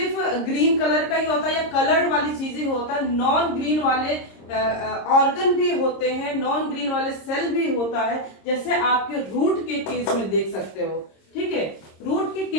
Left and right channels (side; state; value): right; late; 26 ms